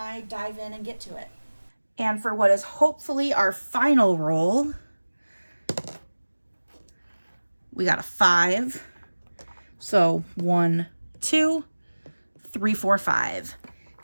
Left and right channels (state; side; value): inverted; both; correlation -1.00